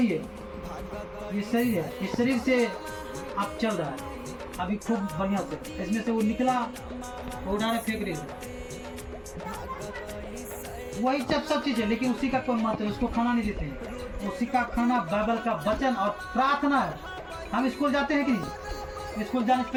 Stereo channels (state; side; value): identical; both; correlation 1.00